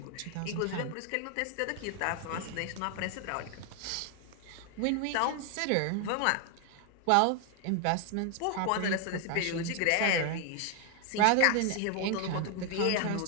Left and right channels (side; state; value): both; different; correlation 0.00